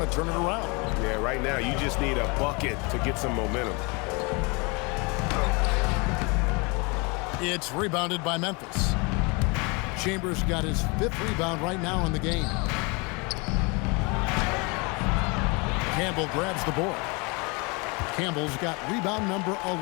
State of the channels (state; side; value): quieter; right; 29.2 dB